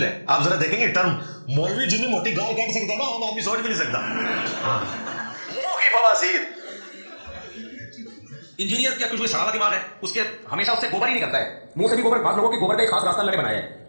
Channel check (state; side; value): inverted; both; correlation -1.00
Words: ہے۔ آپ ذرا دیکھیں گے ٹرم، مولوی جتنی موٹی گال کاٹ سکتا ہے نا عام آدمی سوچ بھی نہیں سکتا، منہ کی بواسیر۔ انجینئر کا کچھ سڑا دماغ ہے، اس کے ہمیشہ اس سے گوبر ہی نکلتا ہے، منہ سے بھی گوبر، بعض لوگوں کے گوبر کا ایک خاص راستہ اللہ نے بنایا ہے